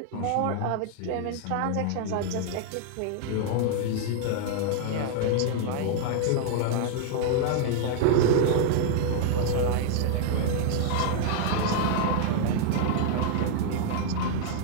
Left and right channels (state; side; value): different; both; correlation -0.01